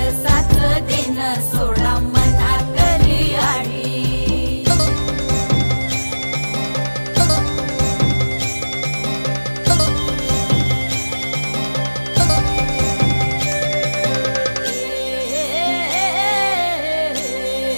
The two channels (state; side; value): inverted; both; correlation -1.00